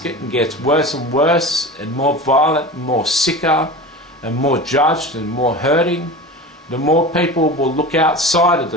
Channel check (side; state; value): both; normal; correlation 0.31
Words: and gets worse and worse and more violent and more sicker and more judged and more hurting, the more people will look outside of